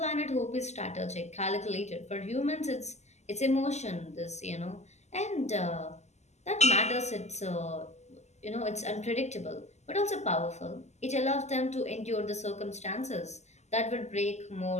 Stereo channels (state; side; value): late; right; 0.33 ms